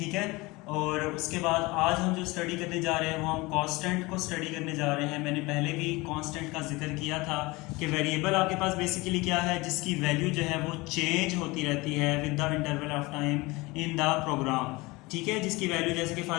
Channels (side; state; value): right; quieter; 22.9 dB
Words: है। और उसके बाद आज हम जो स्टडी करने जा रहे हैं वो हम कांस्टेंट को स्टडी करने जा रहे हैं। मैंने पहले भी कांस्टेंट का जिक्र किया था कि वेरिएबल आपके पास बेसिकली क्या है, जिसकी वैल्यू जो है वो चेंज होती रहती है with the interval of time in the program. ठीक है, जिसकी वैल्यू जैसे कि for